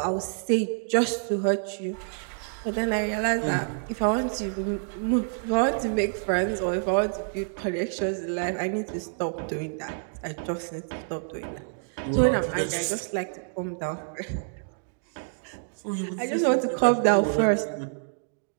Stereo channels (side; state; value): left; silent; digital silence